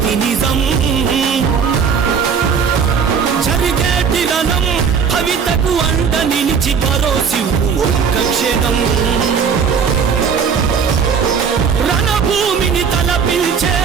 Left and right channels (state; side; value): quieter; left; 6.4 dB